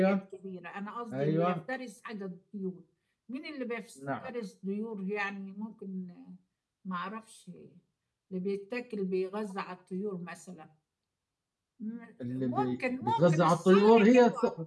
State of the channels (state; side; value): identical; both; correlation 1.00